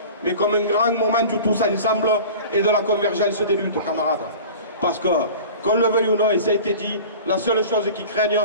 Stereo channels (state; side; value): inverted; both; correlation -0.38